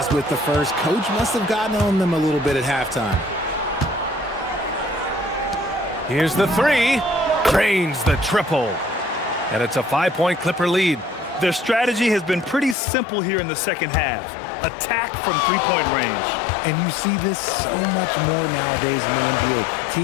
with the first. Coach must have gotten on them a little bit at halftime. Here's the 3. Drains the triple. And it's a 5-point Clipper lead. Their strategy has been pretty simple here in the second half. Attack from three-point range. And you see this so much more nowadays in the NBA.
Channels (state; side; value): drops out; right; at 12.8 s